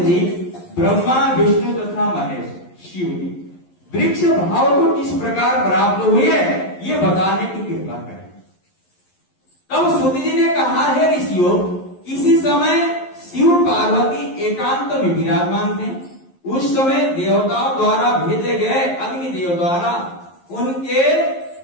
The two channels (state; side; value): late; right; 11 ms